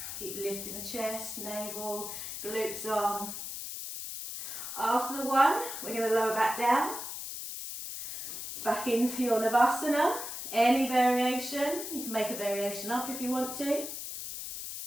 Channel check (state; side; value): noise; left; hiss, 7 dB below the sound